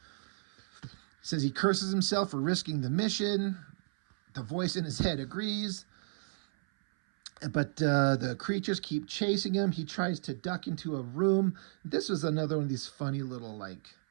Says he curses himself for risking the mission. The voice in his head agrees. But the creatures keep chasing him. He tries to duck into a room. This was another one of these funny little, like,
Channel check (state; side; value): silent; left; 56 dB below the other